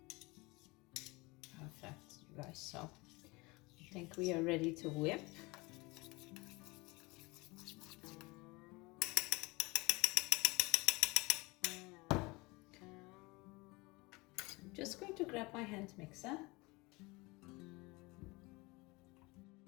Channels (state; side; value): quieter; right; 24.3 dB